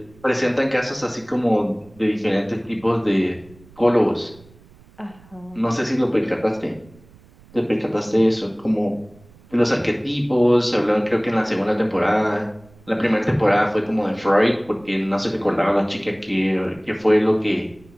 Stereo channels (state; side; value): noise; right; rumble, 26 dB below the sound